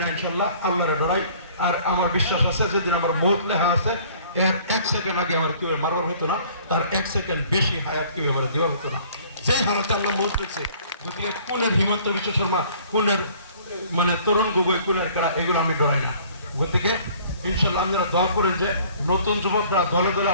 ইনশাল্লাহ আল্লাহরে ডরাই। আর আমার বিশ্বাস আছে যেদিন আমার মৌত লেখা আছে এর 1 সেকেন্ড আগে আমার কেউ মারবার হতো না, তার 1 সেকেন্ড বেশি হায়াত কেউ আমার দেওয়া হতো না। যেই হালতে আমরা মৌত রেখেছি, গতিকে কোনের হিমন্ত বিশ্ব শর্মা, কোনের মানে তরুণ গগৈ, কোনের কারা, এগুলো আমি ডরাই না। গতিকে ইনশাল্লাহ আপনারা দোয়া করেন যে নতুন যুবকরা দলে দলে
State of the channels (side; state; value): both; inverted; correlation -0.54